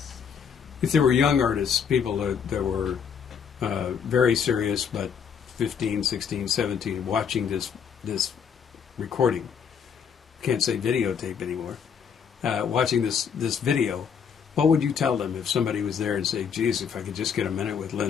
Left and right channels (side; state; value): right; quieter; 7.0 dB